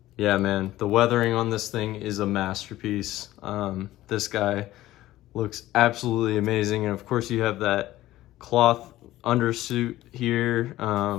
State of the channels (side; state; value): right; quieter; 15.5 dB